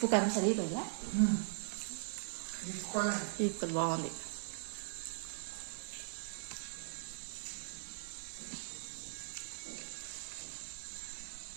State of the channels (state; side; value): silent; left; digital silence